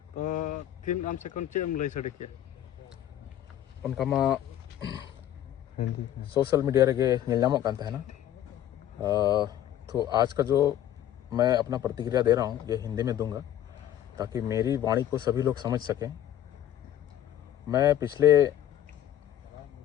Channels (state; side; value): quieter; right; 11.5 dB